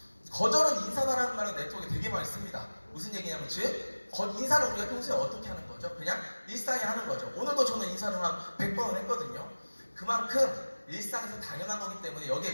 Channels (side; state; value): both; inverted; correlation -1.00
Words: 거절은 인사다라는 말은 네트워크에 되게 많이 씁니다. 무슨 얘기냐면 즉 인사를 우리가 평소에 어떻게 하는 거죠? 그냥 일상에 하는 거죠. 오늘도 저는 인사를 한 100번은 했거든요. 그만큼 일상에서 당연한 거기 때문에 여기에